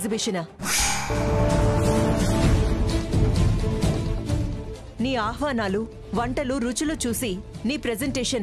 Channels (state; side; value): identical; both; correlation 1.00